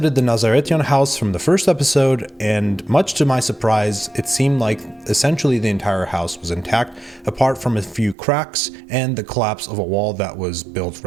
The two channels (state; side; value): drops out; left; at 8.2 s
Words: the Nazaretian house from the first episode, and much to my surprise, it seemed like essentially the entire house was intact, apart from a few cracks and the collapse of a wall that was built